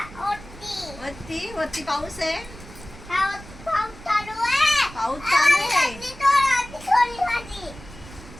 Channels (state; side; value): noise; right; rumble, 17 dB below the sound